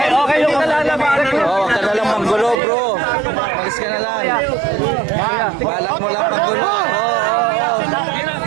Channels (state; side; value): drops out; left; at 2.6 s